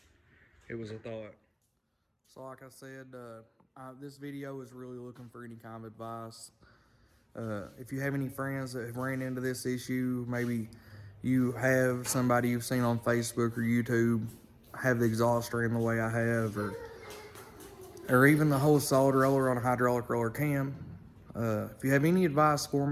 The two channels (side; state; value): both; identical; correlation 1.00